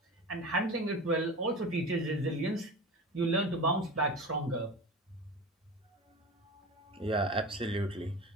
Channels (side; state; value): both; normal; correlation 0.31